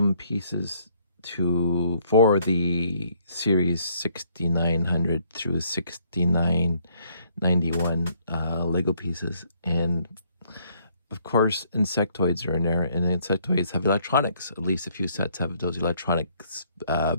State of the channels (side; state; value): both; inverted; correlation -0.67